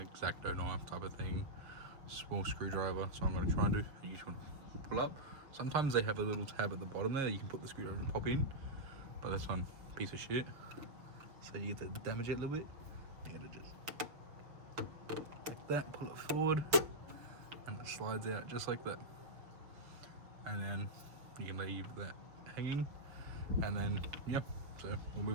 X-Acto knife type of thing, small screwdriver. So I'm going to try and do, you just want to pull up. Sometimes they have a little tab at the bottom there that you can put the screwdriver and pop in, but this one, piece of shit. So you get to damage it a little bit. You gotta just like that, pull it forward, and it slides out just like that. And then you can leave that hanging, and then yeah. So we'll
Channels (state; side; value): late; left; 6.5 ms